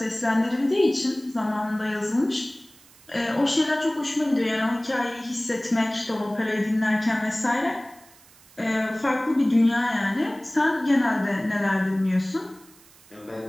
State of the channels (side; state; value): right; noise; hiss, 26 dB below the sound